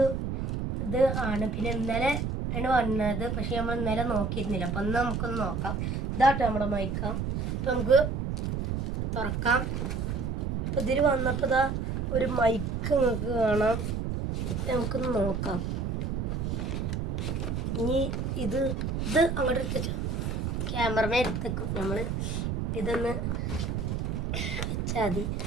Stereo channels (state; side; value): noise; right; rumble, 1 dB below the sound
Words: ആണ്. പിന്നെ ഇന്നലെ ആണ് വന്നത്, പക്ഷേ നമ്മൾ ഇന്നലെ നോക്കിയിരുന്നില്ല. അപ്പോൾ ഒന്ന് നമുക്കൊന്ന് നോക്കാം. ഇതാട്ടോ നമ്മുടെ മൈക്ക. അപ്പോൾ നമുക്ക് തുറക്കാം. അപ്പോൾ ഇതിൽ വന്നപ്പോൾ ഇതാ ഒരു മൈക്ക് നിങ്ങൾക്ക് കാണാം. നമുക്കൊന്ന് നോക്കാം. ഇനി ഇത് അങ്ങോട്ട് എടുത്തുവെച്ചാൽ ക്യാമറമേ എടുത്തേക്കും. നമ്മൾ ഇതൊന്ന് വെച്ചാൽ മതി.